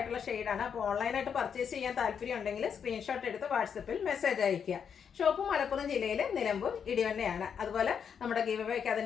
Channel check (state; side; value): quieter; right; 7.3 dB